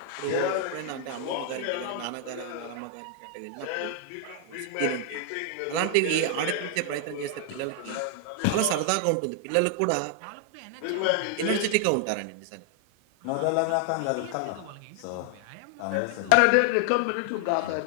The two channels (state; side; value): different; both; correlation 0.00